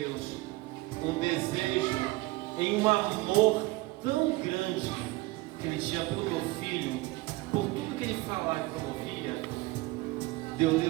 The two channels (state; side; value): quieter; left; 20.9 dB